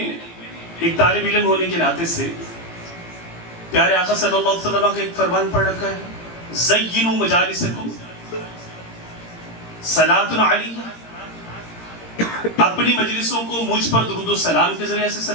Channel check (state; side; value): late; right; 17 ms